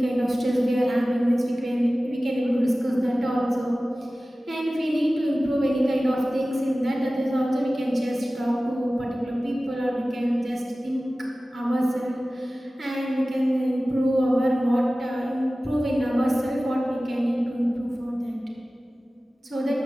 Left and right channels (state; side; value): normal; both; correlation 0.97